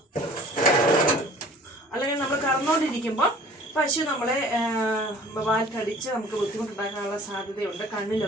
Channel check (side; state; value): both; normal; correlation 0.49